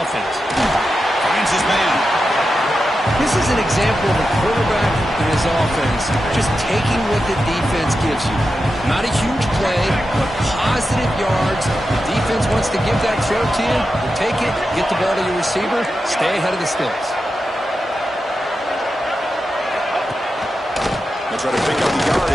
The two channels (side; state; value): both; normal; correlation 0.90